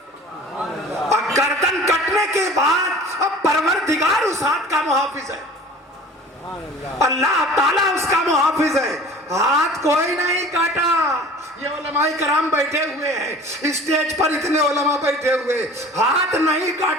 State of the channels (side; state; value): both; normal; correlation 0.44